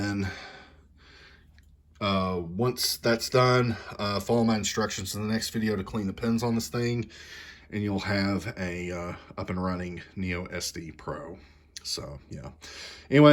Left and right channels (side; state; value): both; identical; correlation 1.00